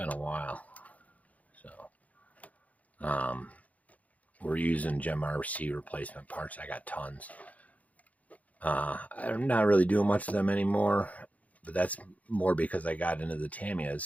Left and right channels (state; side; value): late; right; 0.072 ms